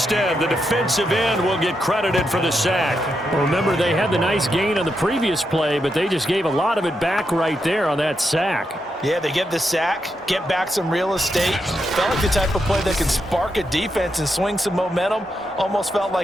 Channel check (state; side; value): normal; both; correlation 0.84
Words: the defensive end, will get credited for the sack. Well, remember, they had the nice gain on the previous play, but they just gave a lot of it back right there on that sack. Yeah, they get the sack, get back some real estate. Felt like the type of play that can spark a defense and swing some momentum. Almost felt